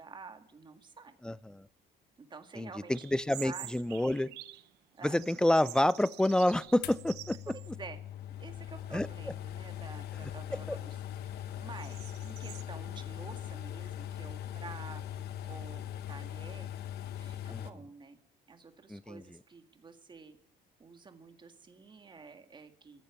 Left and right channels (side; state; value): both; normal; correlation 0.91